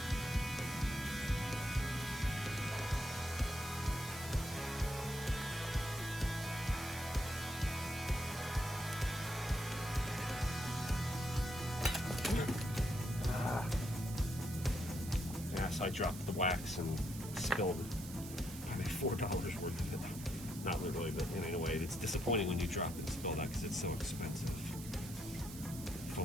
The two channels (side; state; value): right; noise; hiss, 13 dB below the sound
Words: Yes, I dropped the wax and spilled probably $4 worth of it. Not literally, but in a way, it's disappointing when you drop it and spill that because it's so expensive.